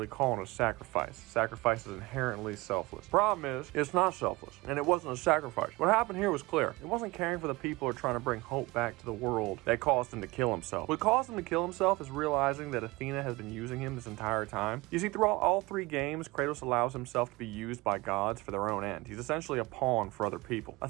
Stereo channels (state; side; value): quieter; left; 22.0 dB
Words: calling it a sacrifice. Sacrifice is inherently selfless. Problem is, it's not selfless, and it wasn't a sacrifice. What happened here was clear. It wasn't caring for the people or trying to bring hope back to the world that caused him to kill himself. What caused him to kill himself is realizing that Athena has been using him this entire time. You see, throughout all three games, Kratos allows himself to be used by gods for their own end. He's essentially a pawn for other people.